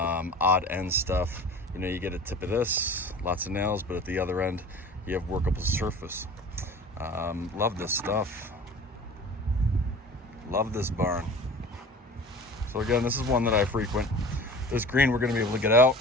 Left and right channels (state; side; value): normal; both; correlation 0.40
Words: end stuff. You know, you get a tip of this, lots of nails, but at the other end, you have workable surface. Love this stuff. Love this barn. So again, this is one that I frequent. This green we're going to be able to get out.